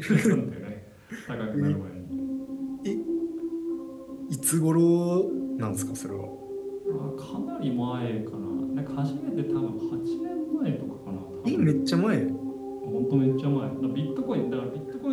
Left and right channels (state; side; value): identical; both; correlation 1.00